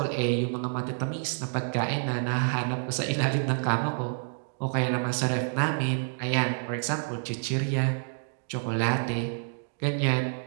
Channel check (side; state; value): left; silent; 59 dB below the other